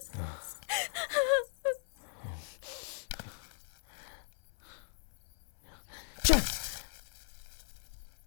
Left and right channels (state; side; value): silent; right; 53 dB below the other